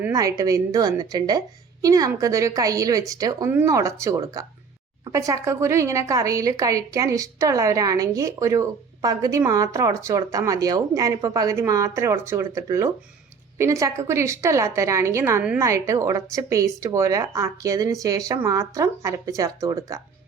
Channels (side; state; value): left; quieter; 5.6 dB